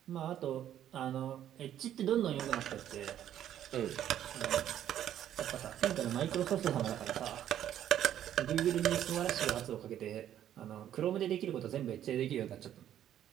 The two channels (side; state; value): left; quieter; 11.0 dB